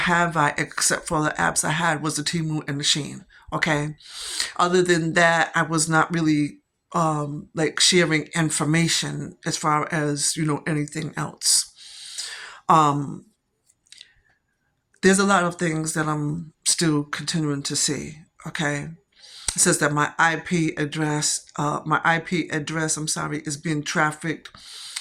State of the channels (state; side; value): identical; both; correlation 1.00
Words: I, except for the apps I had was the Temu and the Shein. Okay. Other than that, I was not really like sharing information as far as anything else. there's a lot of things that I'm still continuing to see. Okay, it says that my IP address, I'm sorry, is being trafficked